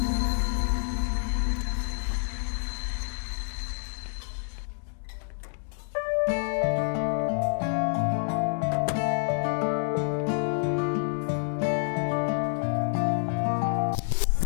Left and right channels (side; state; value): right; silent; digital silence